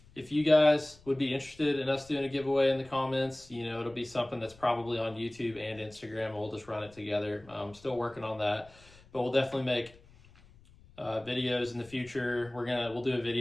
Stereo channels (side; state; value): left; noise; rumble, 25 dB below the sound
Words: if you guys would be interested in us doing a giveaway in the comments. You know, it'll be something that's probably on YouTube and Instagram. We'll just run it together. I'm still working on that, but we'll definitely make videos in the future. We'll do a